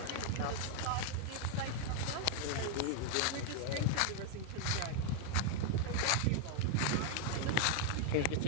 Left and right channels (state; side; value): different; both; correlation 0.00